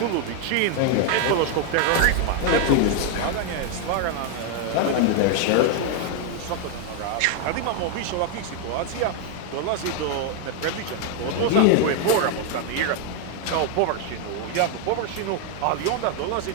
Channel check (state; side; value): different; both; correlation 0.00